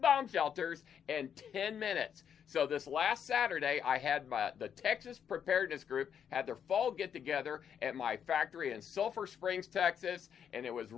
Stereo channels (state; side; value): quieter; right; 8.2 dB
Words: shelters in 10 minutes. So this last Saturday, I had the Texas Preparedness Group had their fall get-together at my factory in Sulphur Springs, Texas, and it was